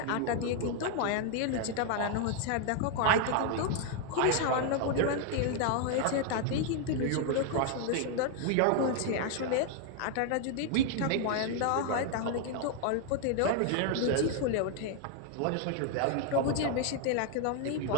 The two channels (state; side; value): different; both; correlation 0.00